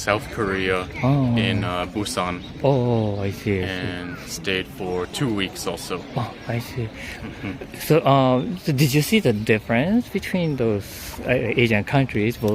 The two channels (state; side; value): identical; both; correlation 1.00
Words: Korea in Busan. I see. And stayed for 2 weeks also. I see. So did you see the difference between those Asian countries,